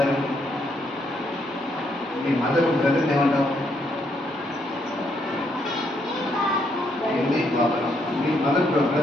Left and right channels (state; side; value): normal; both; correlation 0.74